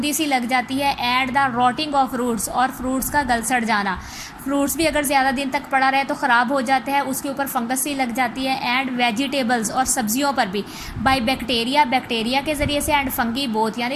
सी लग जाती है। And the rotting of fruits, और फ्रूट्स का गल सड़ जाना, फ्रूट्स भी अगर ज़्यादा दिन तक पड़ा रहे तो ख़राब हो जाते हैं, उसके ऊपर फंगस सी लग जाती है। एंड वेजिटेबल्स, और सब्जियों पर भी बाय बैक्टीरिया के ज़रिए से। एंड फंगी बोथ,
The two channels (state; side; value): identical; both; correlation 1.00